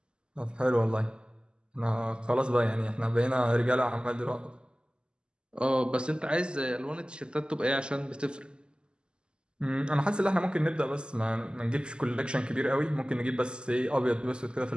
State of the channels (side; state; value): left; late; 0.049 ms